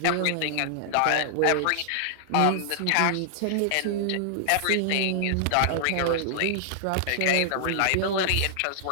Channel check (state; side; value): different; both; correlation -0.01